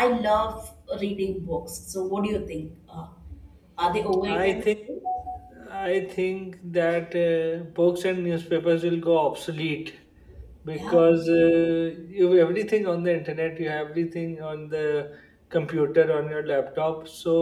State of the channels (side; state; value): both; identical; correlation 1.00